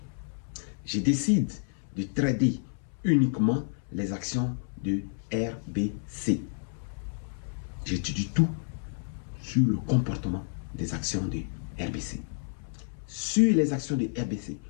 Je décide de trader uniquement les actions de RBC. J'étudie tout sur le comportement des actions de RBC. Sur les actions de RBC,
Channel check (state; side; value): silent; right; 58 dB below the other